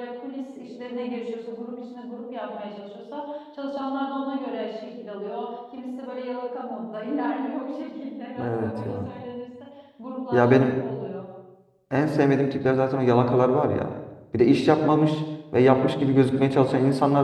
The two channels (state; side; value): identical; both; correlation 1.00